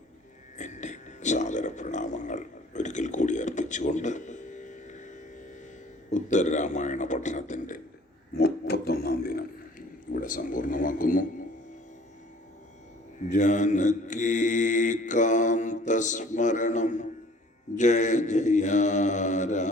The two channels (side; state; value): both; normal; correlation 0.53